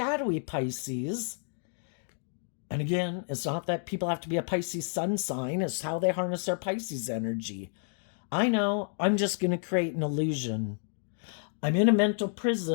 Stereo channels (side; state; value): right; silent; 58 dB below the other